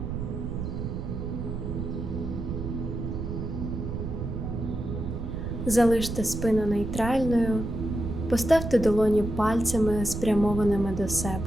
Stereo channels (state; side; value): noise; right; rumble, 5 dB below the sound